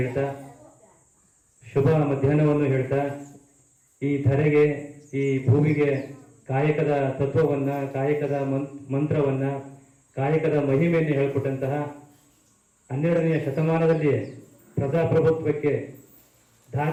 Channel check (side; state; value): both; identical; correlation 1.00